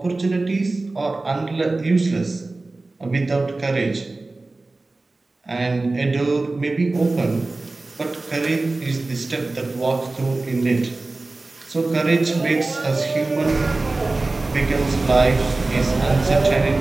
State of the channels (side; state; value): left; quieter; 3.2 dB